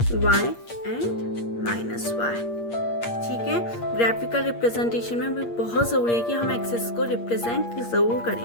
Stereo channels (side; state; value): right; late; 8.6 ms